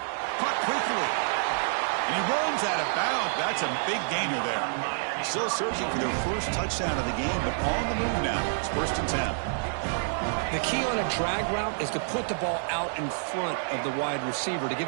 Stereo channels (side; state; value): left; silent; digital silence